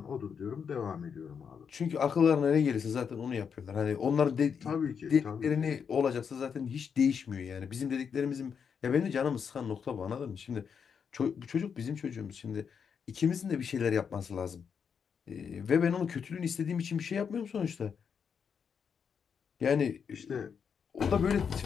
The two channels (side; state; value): right; quieter; 6.8 dB